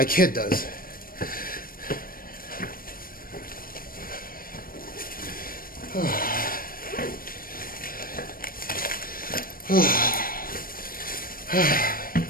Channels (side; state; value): right; late; 0.42 ms